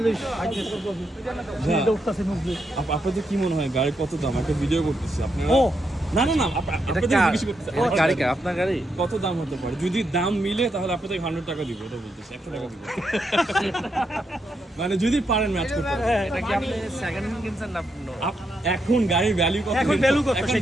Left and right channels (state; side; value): normal; both; correlation 0.81